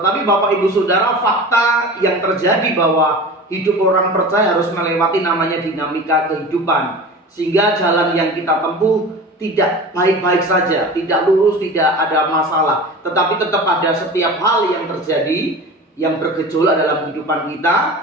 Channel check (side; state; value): both; normal; correlation 0.35